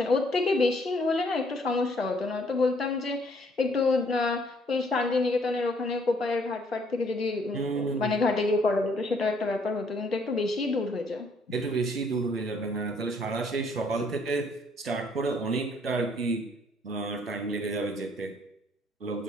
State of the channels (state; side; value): normal; both; correlation 0.65